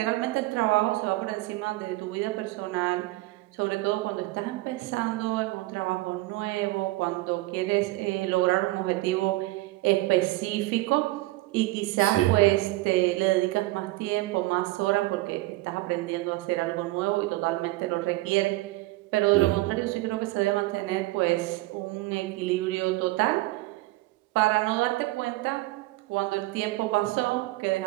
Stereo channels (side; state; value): left; quieter; 19.6 dB